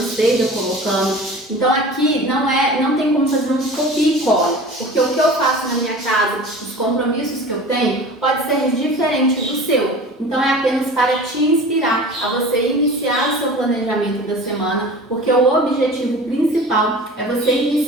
colocando. Então aqui não tem como fazer um copia e cola, porque o que eu faço na minha casa, os compromissos que eu tenho pode ser diferente do seu. Então é apenas para te inspirar a você iniciar o seu planejamento da semana, porque o objetivo principal é você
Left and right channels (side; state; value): both; normal; correlation 0.39